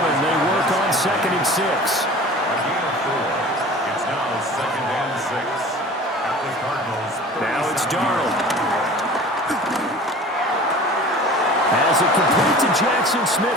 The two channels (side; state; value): both; normal; correlation 0.41